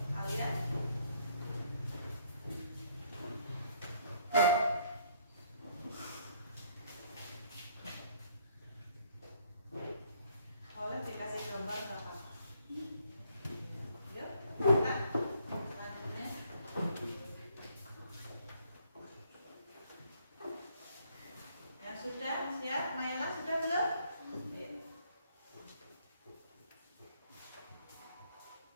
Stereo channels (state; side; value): inverted; both; correlation -0.66